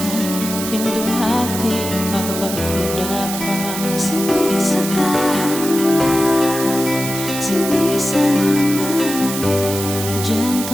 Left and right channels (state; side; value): noise; right; hiss, 6 dB below the sound